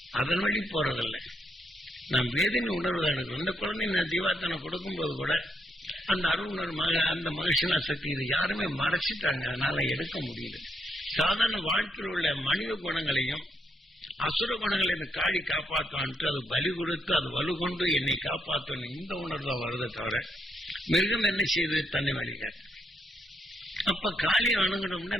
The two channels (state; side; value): normal; both; correlation 0.79